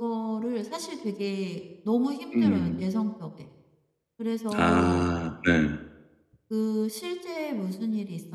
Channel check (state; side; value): identical; both; correlation 1.00